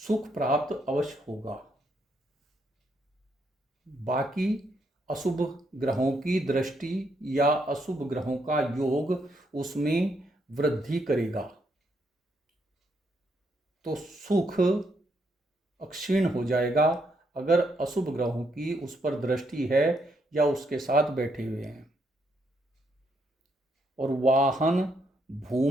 प्राप्त अवश्य होगा। बाकी अशुभ ग्रहों की दृष्टि या अशुभ ग्रहों का योग उसमें वृद्धि करेगा, तो सुख अक्षीण हो जाएगा अगर अशुभ ग्रहों की उस पर दृष्टि है या उसके साथ बैठे हुए हैं। और वाहन,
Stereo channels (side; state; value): both; normal; correlation 0.76